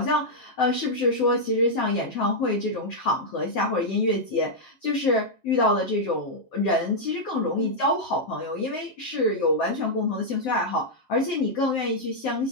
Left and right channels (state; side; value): late; right; 7.5 ms